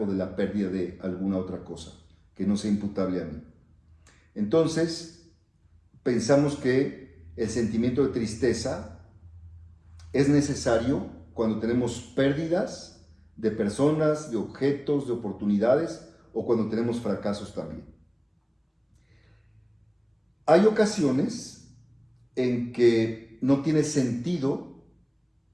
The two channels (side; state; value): both; identical; correlation 1.00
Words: o de la pérdida de alguna otra cosa, que no sea imputable a mí. Entonces, pensamos que el sentimiento de tristeza es necesario cuando tenemos pérdidas de personas, de objetos, de oportunidades o cuando tenemos fracasos también. Hay ocasiones en que no tiene sentido